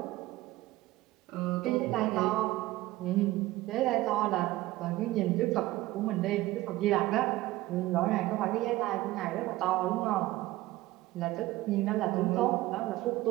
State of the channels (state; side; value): quieter; left; 17.4 dB